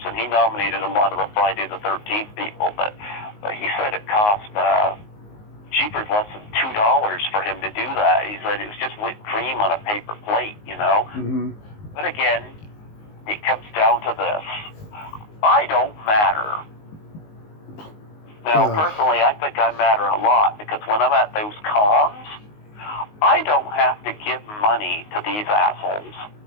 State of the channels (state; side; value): late; right; 19 ms